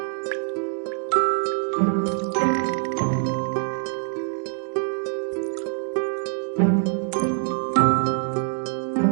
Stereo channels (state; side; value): silent; left; 59 dB below the other